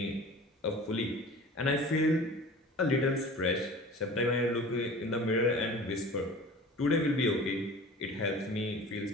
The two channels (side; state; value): both; normal; correlation 0.41